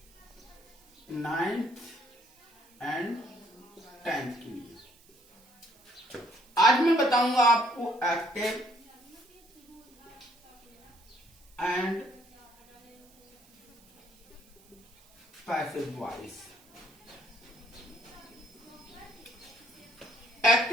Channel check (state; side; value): noise; right; hiss, 28 dB below the sound